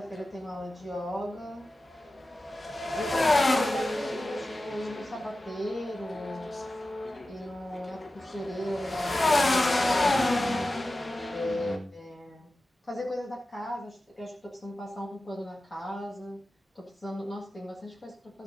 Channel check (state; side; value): normal; both; correlation 0.94